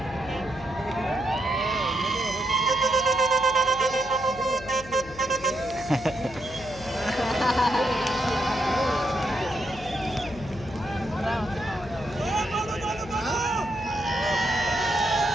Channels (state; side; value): noise; left; hum, 16 dB below the sound